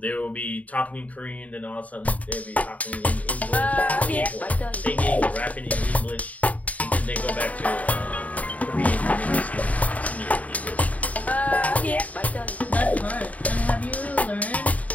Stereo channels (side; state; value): right; late; 0.070 ms